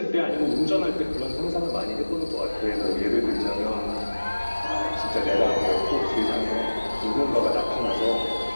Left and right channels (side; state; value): both; inverted; correlation -1.00